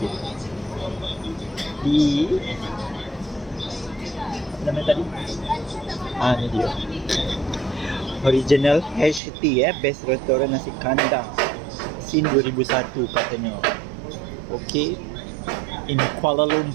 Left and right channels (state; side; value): drops out; left; at 9.2 s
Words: Apa nama tadi? Ni dia. Original HT, Best Restoran Nasi Kandang. Sin 2001 katanya. Okay. In Kuala